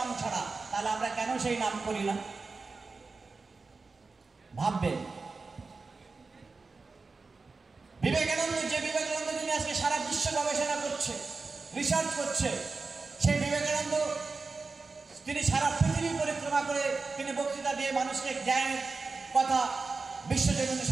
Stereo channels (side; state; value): left; quieter; 4.1 dB